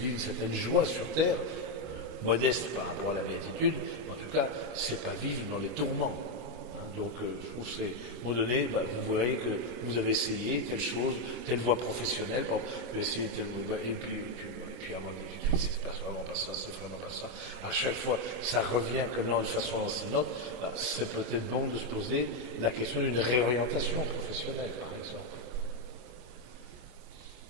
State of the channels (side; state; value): left; late; 24 ms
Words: une certaine joie sur terre, modeste par rapport à la béatitude, mais en tout cas, c'est pas vivre dans les tourments. Donc je trouve que c'est, à un moment donné, vous voyez que vous avez essayé telle chose, telle voie professionnelle, par exemple, vous avez essayé telle et puis avant c'est pas vraiment pas ça, c'est vraiment pas ça. À chaque fois, ça revient que de façon lancinante. C'est peut-être bon de se poser la question d'une réorientation professionnelle, par exemple.